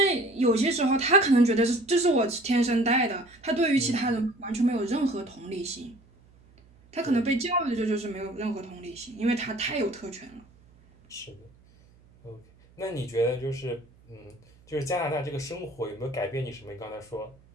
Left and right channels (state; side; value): noise; right; hum, 28 dB below the sound